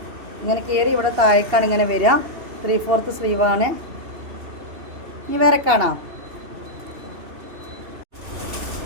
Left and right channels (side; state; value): left; late; 2.8 ms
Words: ഇങ്ങനെ കയറി ഇവിടെ താഴേക്കാണ് ഇങ്ങനെ വരിക. 3/4 സ്ലീവാണ്. ഇനി വേറെ കാണാം.